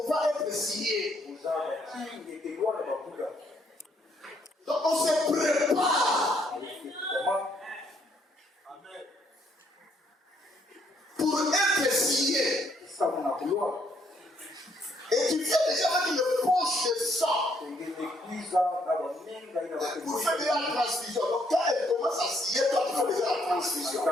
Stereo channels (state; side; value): normal; both; correlation 0.70